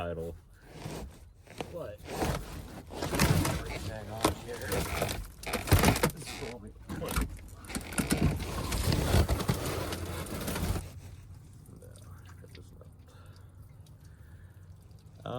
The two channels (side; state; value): both; identical; correlation 1.00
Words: But everything on here is what we put.